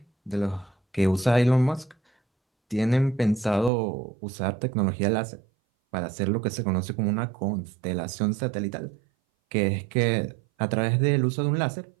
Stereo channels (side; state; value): left; drops out; at 3.7 s